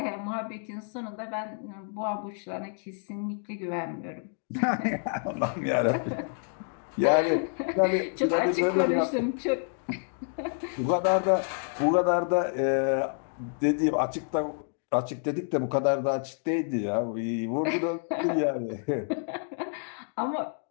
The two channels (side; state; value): right; silent; 59 dB below the other